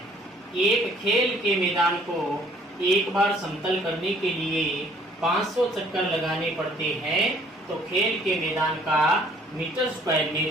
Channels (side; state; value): both; normal; correlation 0.59